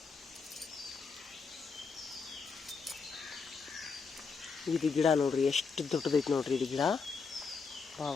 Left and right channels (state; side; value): quieter; right; 5.1 dB